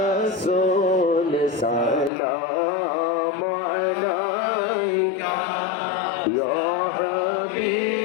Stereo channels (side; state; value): right; drops out; at 2.1 s